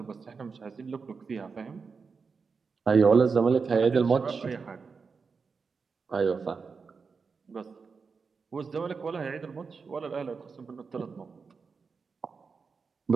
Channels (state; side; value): quieter; left; 5.1 dB